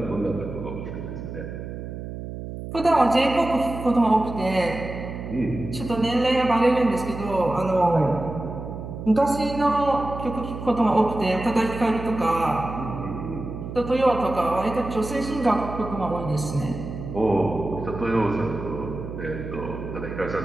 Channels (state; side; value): noise; right; hum, 9 dB below the sound